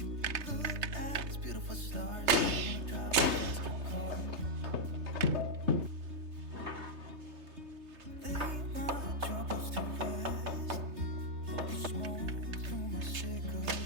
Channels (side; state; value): left; late; 3.3 ms